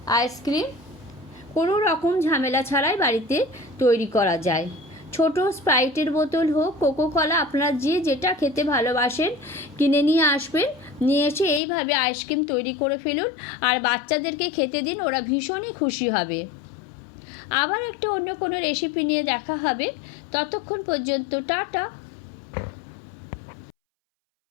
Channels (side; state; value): right; drops out; at 11.6 s